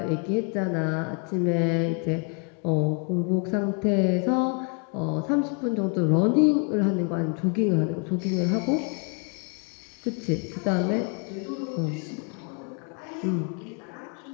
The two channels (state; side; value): quieter; right; 36.6 dB